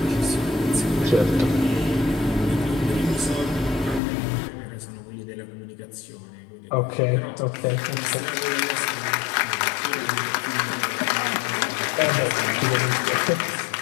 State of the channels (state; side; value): drops out; right; at 4.0 s